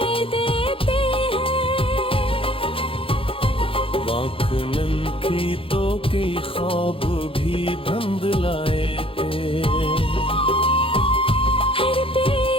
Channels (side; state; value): right; late; 0.26 ms